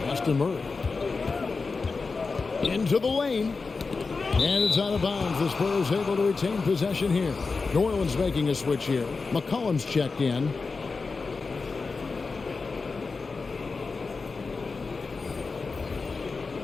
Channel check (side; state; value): right; quieter; 4.3 dB